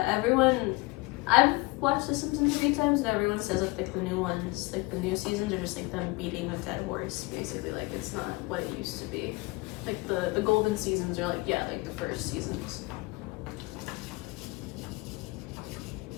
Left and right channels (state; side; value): quieter; right; 23.7 dB